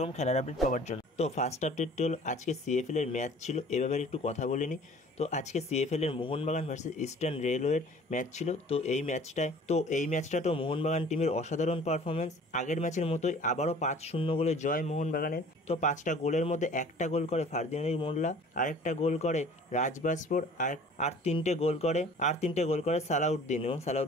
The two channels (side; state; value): both; normal; correlation 0.48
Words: খেলার আপডেট পাওয়ার জন্য। তো ফার্স্ট আপডেটটি হলো আজকে সিএফএল এর ম্যাচ ছিল, এ ব্যাপারে একটু কথা বলে নিই। তো আজকে সিএফএল এর মোহনবাগান ভার্সেস ইস্টার্ন রেলওয়ের ম্যাচ ছিল। তো এই ম্যাচটাতেও মোহনবাগান টিমের অসাধারণ পারফরমেন্স। আগের ম্যাচের মতোই আবারও 5-0 গোলে জয় মোহনবাগানের। তো 5টা গোলের মধ্যে একটা গোল করে ফার্দিনান্দ মোল্লা, আরেকটা গোল করে রাজবাসপুর, আর তিনটে গোল করে সালাউদ্দিন, এবং